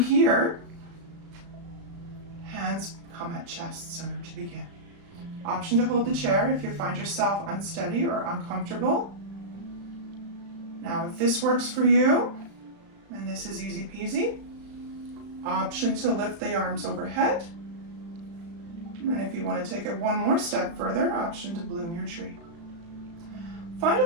hands come at chest center to begin. Option to hold the chair if you find yourself unsteady or uncomfortable. Now if this works for you, and this is easy peasy, option to lift the arms overhead. And if you want to take it one more step further, option to bloom your tree. Find a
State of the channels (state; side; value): late; left; 35 ms